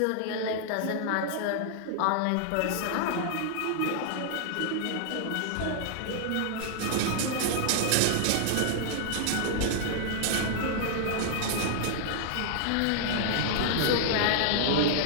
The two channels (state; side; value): different; both; correlation -0.01